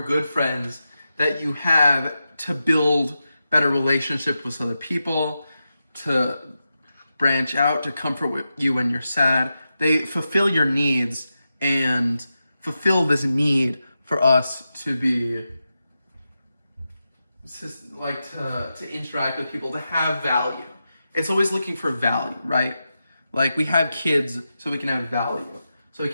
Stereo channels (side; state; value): both; inverted; correlation -0.90